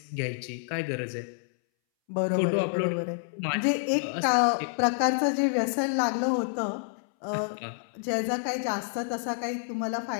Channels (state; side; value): silent; right; 59 dB below the other